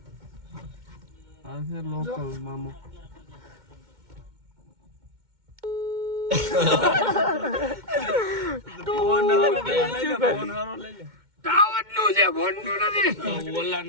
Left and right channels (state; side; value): late; left; 2.1 ms